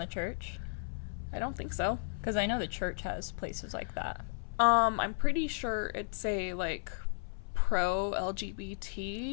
church? I don't think so. Because I know the church has places like that. I'm pretty sure it's a, like, pro-LGBT...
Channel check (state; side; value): silent; right; 55 dB below the other